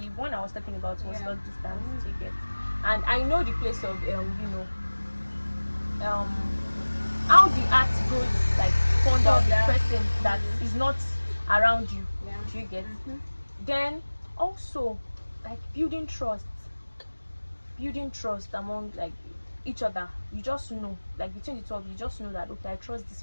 one I was talking about was long distance. You get? And I know the place of you know, how the act goes like fond of the person that is not around you. Do you get? Then also like building trust among like each other. You just know, like between the two of you, just know that okay, I trust this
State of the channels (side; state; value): both; inverted; correlation -1.00